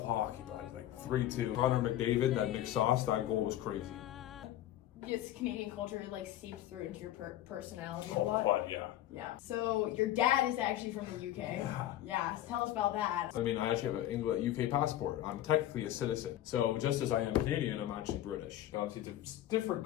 hockey, Bud. Like, 3-2. Connor McDavid, that Nick Sauce, that goal was crazy. Yes, Canadian culture like seeps through into your personality a Oh, lot. Bud, yeah. Yeah. So your dad is actually from the UK. Yeah. Yeah. So tell us about that. I mean, I actually have an UK passport. I'm technically a citizen. So just as I am Canadian, I'm actually British. Obviously, it's a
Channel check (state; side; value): quieter; right; 13.2 dB